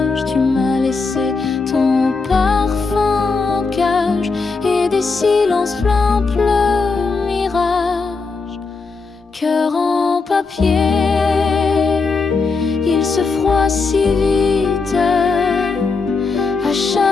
Tu m'as laissé ton parfum en cage et des silences pleins le mirage. Cœur en papier, il se froisse si vite à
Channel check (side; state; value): right; quieter; 4.3 dB